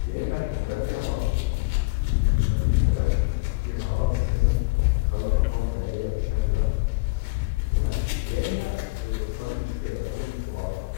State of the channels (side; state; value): right; quieter; 25.3 dB